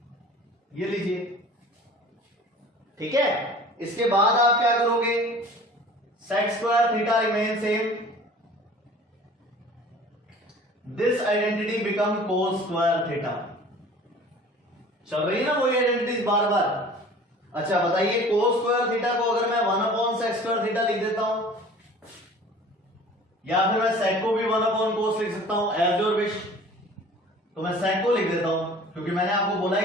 ये लीजिए। ठीक है, इसके बाद आप क्या करोगे, sec square theta remain same, this identity become cos square theta. चल रही है ना वही आइडेंटिटीज बार बार। अच्छा बताइए, cos स्क्वायर थीटा को अगर मैं 1 अपॉन sec स्क्वायर थीटा लिख देता हूं, या फिर मैं sec को भी 1 अपॉन cos लिख सकता हूं, एज योर विश। तो मैं sec को लिख देता हूं, क्योंकि मैंने आपको बोला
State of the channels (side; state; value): both; normal; correlation 0.45